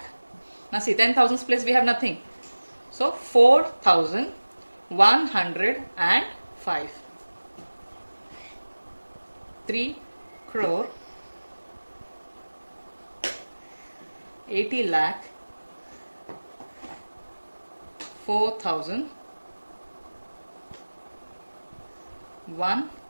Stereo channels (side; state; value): both; inverted; correlation -1.00